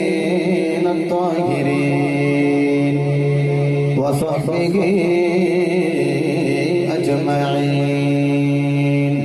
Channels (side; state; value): both; identical; correlation 1.00